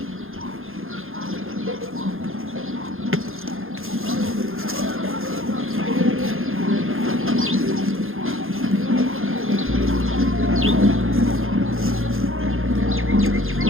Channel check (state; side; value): late; left; 0.60 ms